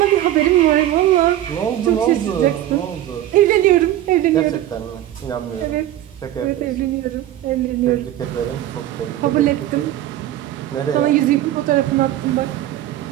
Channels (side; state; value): left; quieter; 13.2 dB